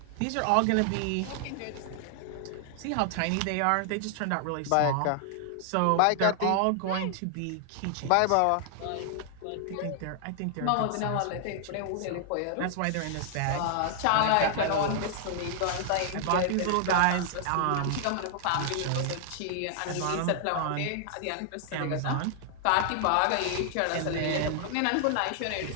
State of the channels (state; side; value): different; both; correlation -0.01